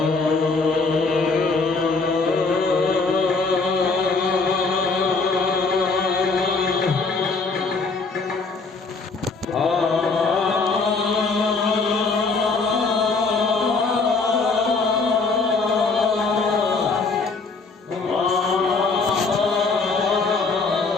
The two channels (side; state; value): right; quieter; 4.1 dB